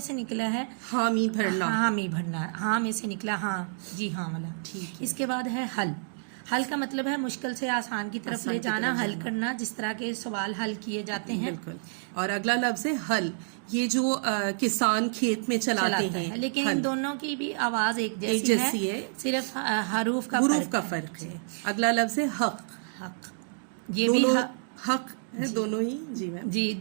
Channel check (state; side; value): silent; left; digital silence